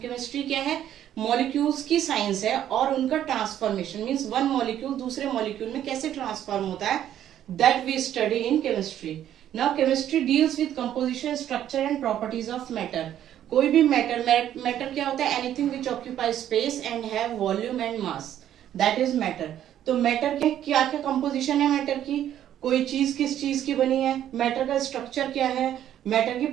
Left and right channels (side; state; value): left; quieter; 11.1 dB